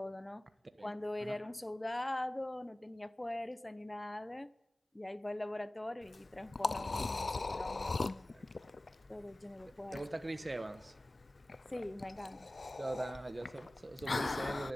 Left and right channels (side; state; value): both; normal; correlation 0.98